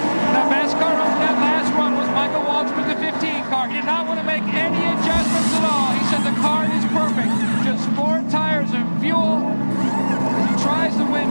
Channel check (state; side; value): inverted; both; correlation -1.00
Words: The best car on that last run was Michael Waltrip with the 15 car. He did not want to make any adjustments at all. He said the car is perfect. Just 4 tires of fuel. He tries to win